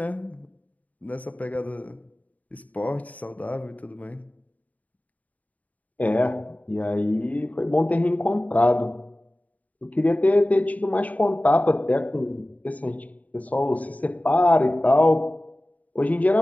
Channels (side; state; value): right; late; 0.072 ms